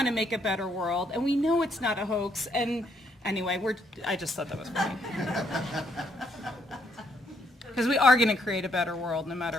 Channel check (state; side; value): normal; both; correlation 0.72